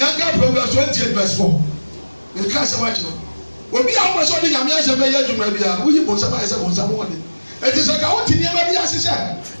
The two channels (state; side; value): inverted; both; correlation -1.00